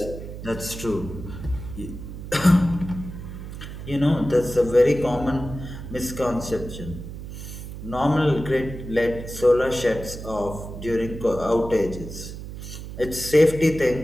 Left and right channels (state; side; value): noise; right; hum, 10 dB below the sound